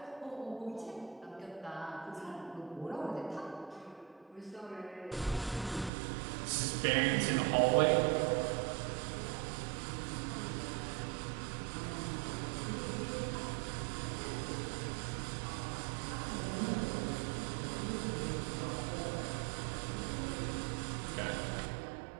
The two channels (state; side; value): drops out; left; at 5.9 s